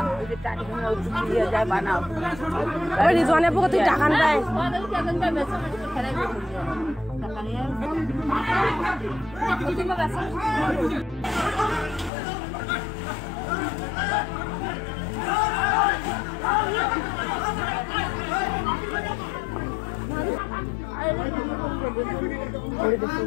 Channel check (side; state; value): right; drops out; at 12.1 s